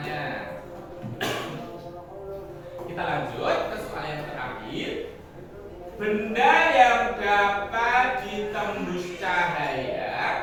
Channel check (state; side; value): identical; both; correlation 1.00